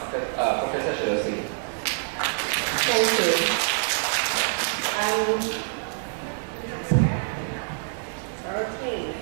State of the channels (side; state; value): left; silent; 61 dB below the other